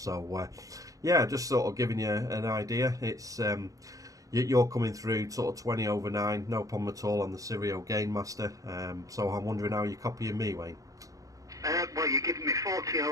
yeah, just sort of giving you an idea. It's you're coming through sort of 20 over 9, no problem at all on the Sirio Gainmaster. So I'm wondering how you're copying me, Wayne. Well, you're giving me 40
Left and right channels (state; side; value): late; left; 0.17 ms